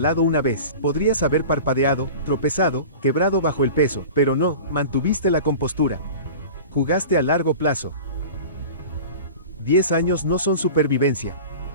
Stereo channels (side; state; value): both; inverted; correlation -0.36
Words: una vez, podrías haber parpadeado, tropezado, quebrado bajo el peso, pero no, mantuviste la compostura. Jugaste a largo plazo. 10 años no son supervivencia.